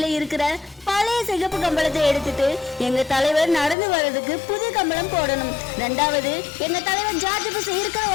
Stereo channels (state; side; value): drops out; right; at 3.8 s